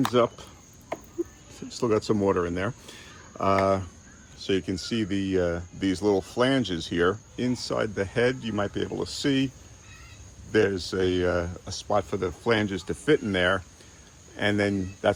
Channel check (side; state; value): both; identical; correlation 1.00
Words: up. Still got some water in there. So you can see these little flanges here. Inside the head, you might be able to see there's a spot for the flanges to fit in there. And then